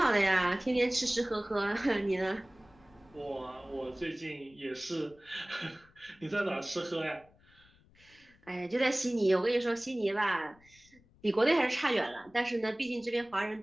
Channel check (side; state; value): left; noise; rumble, 29 dB below the sound